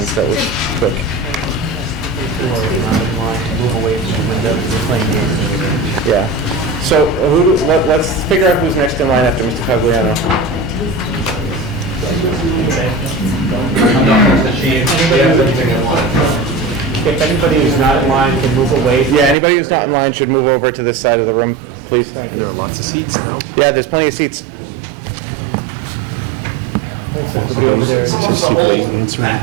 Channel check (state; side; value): drops out; left; at 19.4 s